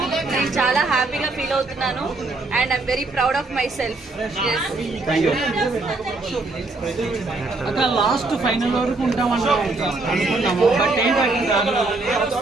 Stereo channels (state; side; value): quieter; left; 3.3 dB